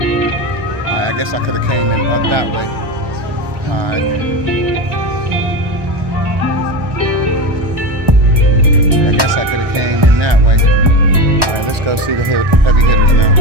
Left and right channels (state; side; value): late; left; 1.1 ms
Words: Alright, I guess I could have came in up that way. Alright. I guess I could have came in that way. Alright, let's go see the heavy hitters now.